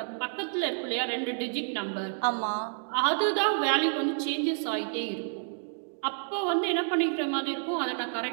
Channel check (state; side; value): silent; left; digital silence